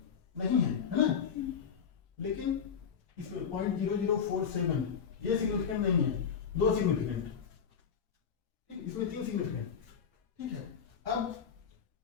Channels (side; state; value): right; quieter; 7.0 dB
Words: नहीं है ना। लेकिन इसमें 0.0047 ये सिग्निफिकेंट नहीं है, दो सिग्निफिकेंट, ठीक, इसमें 3 सिग्निफिकेंट, ठीक है। अब